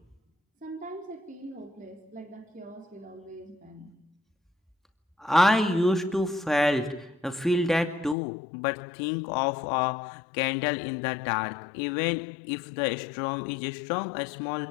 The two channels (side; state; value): right; drops out; at 8.2 s